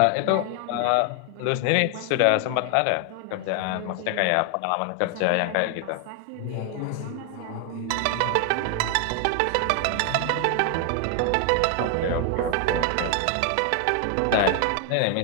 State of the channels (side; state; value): both; different; correlation 0.00